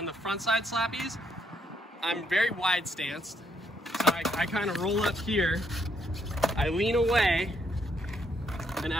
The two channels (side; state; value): both; normal; correlation 0.74